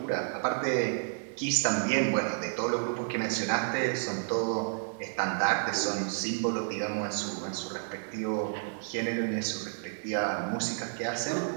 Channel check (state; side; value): silent; left; 57 dB below the other